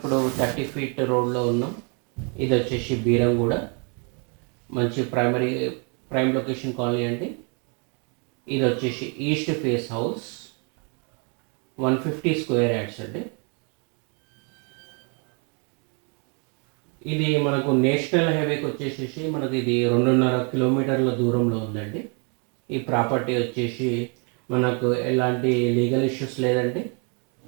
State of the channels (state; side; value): quieter; left; 36.5 dB